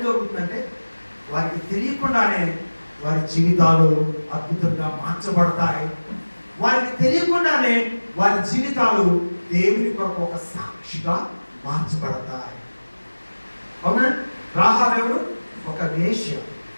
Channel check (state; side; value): inverted; both; correlation -1.00